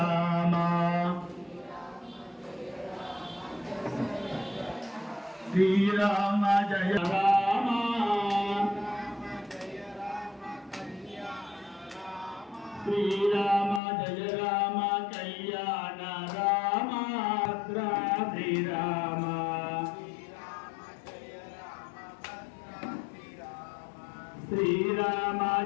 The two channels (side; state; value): right; drops out; at 13.8 s